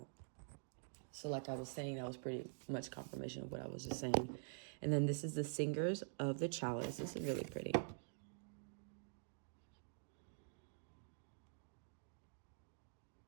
So like I was saying, that was pretty much confirmation of what I was just saying. And then this is the Singers of the Chalice. This is really pretty.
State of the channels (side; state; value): left; silent; digital silence